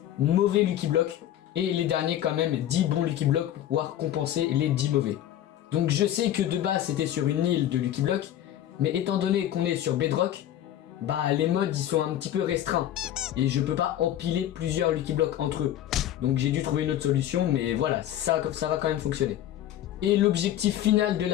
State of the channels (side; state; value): right; quieter; 11.9 dB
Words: mauvais Lucky Block, et les derniers quand même 10 bons Lucky Block pour pouvoir compenser les 10 mauvais. Donc je sais que de base c'était sur une île de Lucky Block, mais étant donné qu'on est sur Bedrock, bah les mods ils sont un petit peu restreints. Et je peux pas empiler plusieurs Lucky Block entre eux. Donc j'ai dû trouver une autre solution, mais voilà, ça va quand même fonctionner. Et l'objectif final de